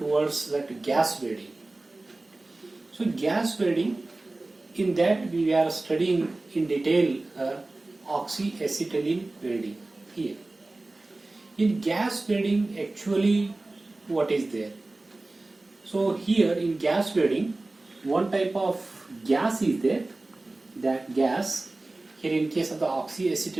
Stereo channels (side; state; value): left; quieter; 3.0 dB